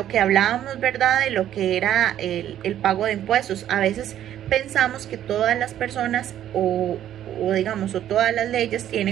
que hablábamos, ¿verdad?, de lo que era el pago de impuestos. A veces pensamos que todas las personas o todas las leyes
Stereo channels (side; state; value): left; quieter; 11.3 dB